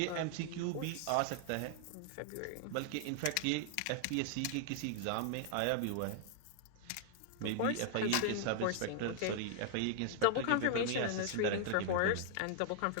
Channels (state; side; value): different; both; correlation 0.00